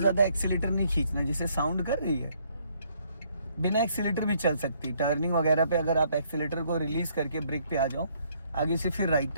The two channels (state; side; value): inverted; both; correlation -0.67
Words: एक्सीलेटर नहीं खींचना, जैसे साउंड कर रही है। बिना एक्सीलेटर भी चल सकती। टर्निंग वगैरह पे अगर आप एक्सीलेटर को रिलीज करके ब्रेक पे आ जाओ, आगे से फिर राइट